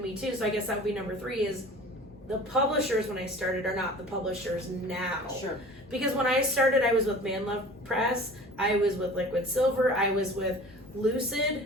me too. So I guess that would be number 3 is the publishers when I started are not the publishers now. Sure. Because when I started, I was with Man Love Press. I was with Liquid Silver. I was with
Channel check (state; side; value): normal; both; correlation 0.42